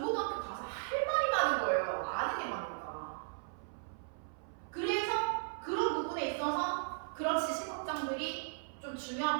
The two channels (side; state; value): left; silent; 53 dB below the other